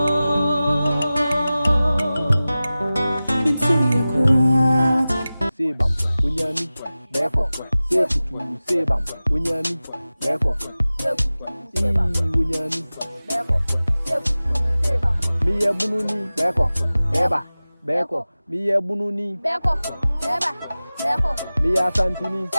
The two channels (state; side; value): inverted; both; correlation -0.97